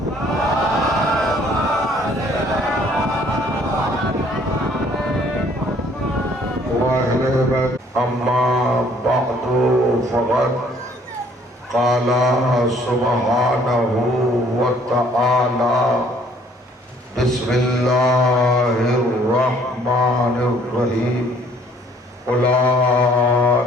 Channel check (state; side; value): normal; both; correlation 0.60